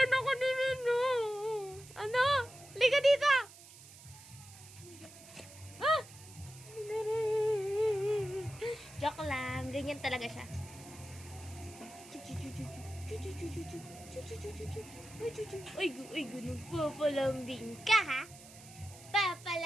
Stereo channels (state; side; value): noise; right; hiss, 19 dB below the sound